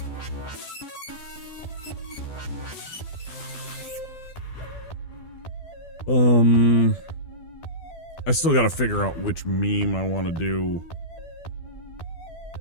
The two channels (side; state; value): right; late; 12 ms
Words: I still gotta figure out which meme I want to do